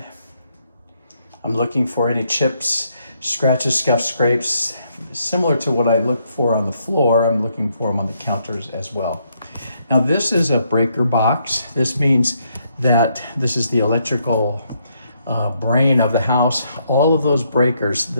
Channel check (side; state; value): both; inverted; correlation -0.74